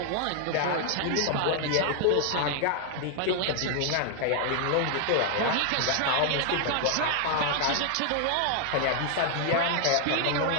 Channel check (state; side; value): different; both; correlation 0.00